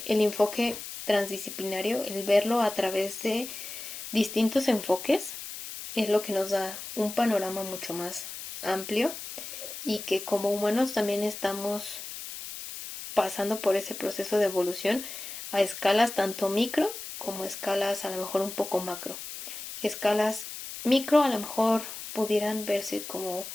el enfoque transdisciplinario, el verlo a través de distintos enfoques, es lo que nos da un panorama mucho más amplio, y que como humanos también estamos pasando por ese proceso de evolución a escalas tanto micro como escalas a lo mejor un poco macro. Escalas micro a lo mejor pudieran verse como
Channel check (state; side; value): noise; left; hiss, 10 dB below the sound